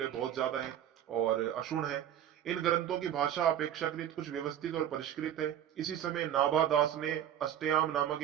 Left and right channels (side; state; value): left; quieter; 10.5 dB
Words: बहुत ज्यादा है और अक्षुण्ण है। इन ग्रंथों की भाषा अपेक्षाकृत कुछ व्यवस्थित और परिष्कृत है। इसी समय नाभा दास ने अष्टयाम नामक